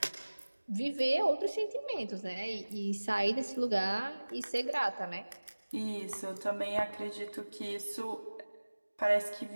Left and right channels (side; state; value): both; inverted; correlation -1.00